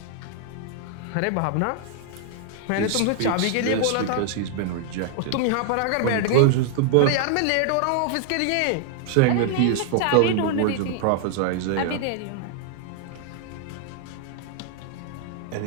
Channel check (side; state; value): both; different; correlation 0.00